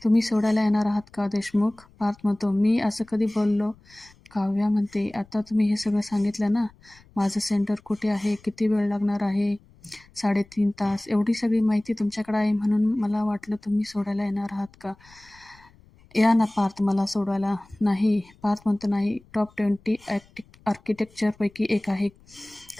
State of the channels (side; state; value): left; noise; rumble, 28 dB below the sound